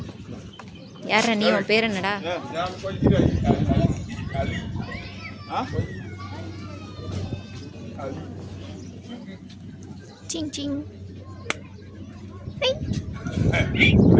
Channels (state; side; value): identical; both; correlation 1.00